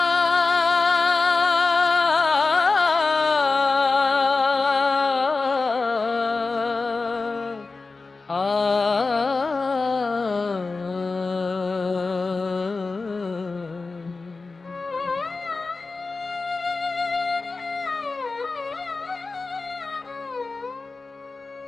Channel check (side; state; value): right; quieter; 3.9 dB